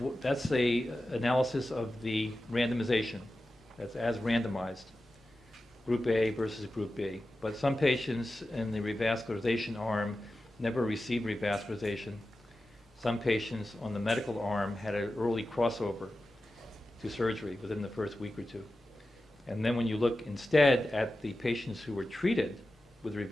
that's the analysis of the randomization. That's as randomized, Group A versus Group B. But some patients in the revascularization arm never received revascularization. Some patients on the medical arm had an early crossover to surgery within the first week or two. And then when you look instead at the patients who were treated with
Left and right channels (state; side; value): normal; both; correlation 0.93